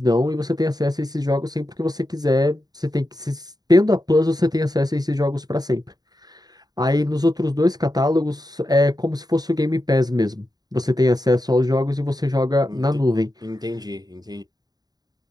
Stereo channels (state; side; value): late; left; 0.19 ms